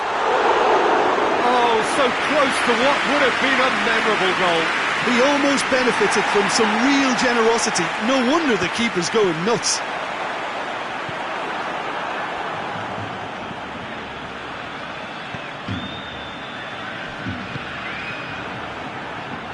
Oh, so close to what would have been a memorable goal. He almost benefited from some real generosity. No wonder the keeper's going nuts.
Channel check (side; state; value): both; identical; correlation 1.00